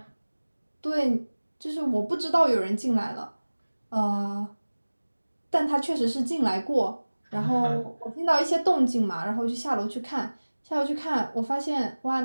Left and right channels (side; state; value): both; inverted; correlation -1.00